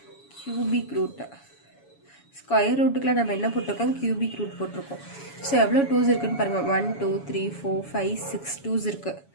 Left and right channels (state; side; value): late; right; 7.1 ms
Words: cubic root. Square ரூட்டுக்குள்ள நம்ம என்ன போட்டிருக்கோம்? கியூபிக் ரூட் போட்டிருக்கோம். ஸோ எவ்வளோ 2s இருக்குன்னு பாருங்கள். 1 2 3 4 5 6 2s இருக்குது.